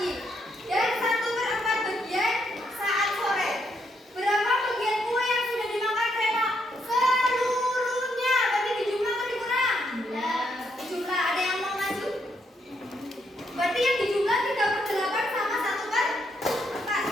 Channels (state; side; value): normal; both; correlation 0.76